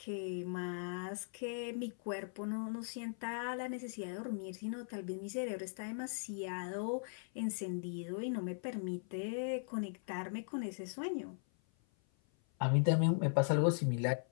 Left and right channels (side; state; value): right; silent; 52 dB below the other